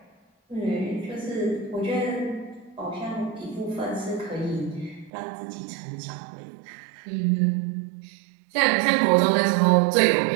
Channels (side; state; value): left; drops out; at 5.1 s